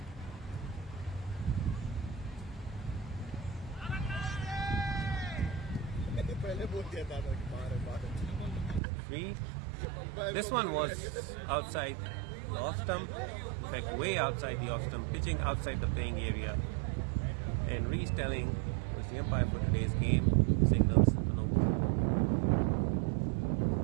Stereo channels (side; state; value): left; drops out; at 8.8 s